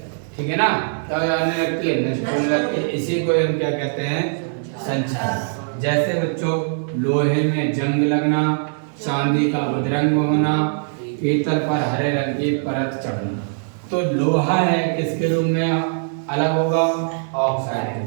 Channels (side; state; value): left; silent; digital silence